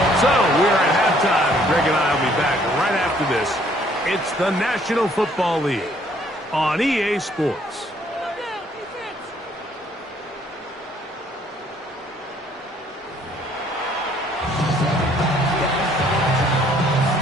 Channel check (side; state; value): both; normal; correlation 0.63